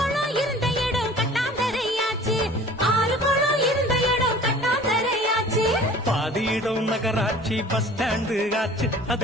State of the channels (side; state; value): both; normal; correlation 0.46